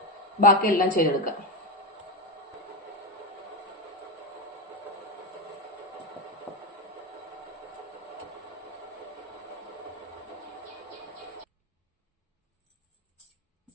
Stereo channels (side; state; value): both; normal; correlation 0.11